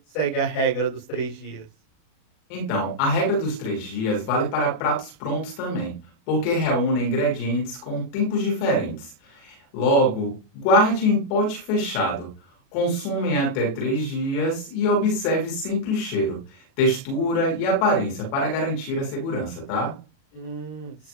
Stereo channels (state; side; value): late; right; 36 ms